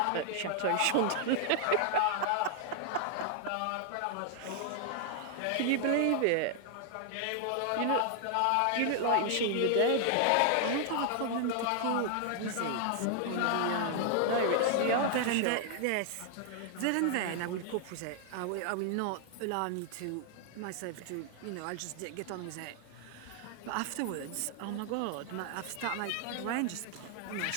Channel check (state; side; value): different; both; correlation 0.00